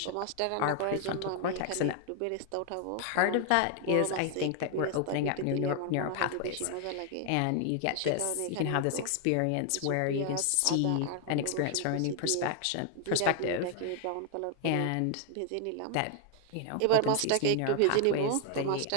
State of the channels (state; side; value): different; both; correlation 0.00